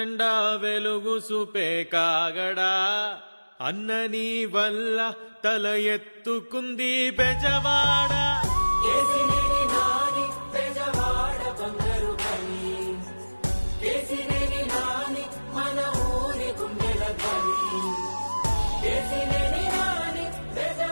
వెలుగు చూపే కాగడా. అన్నని వల్ల తల ఎత్తుకుంది బెజవాడ.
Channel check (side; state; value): both; inverted; correlation -1.00